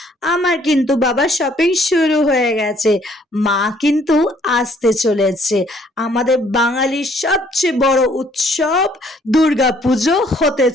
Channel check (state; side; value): normal; both; correlation 0.62